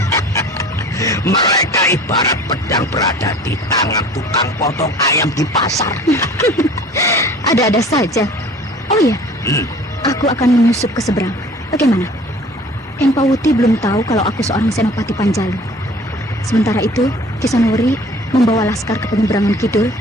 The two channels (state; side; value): normal; both; correlation 0.47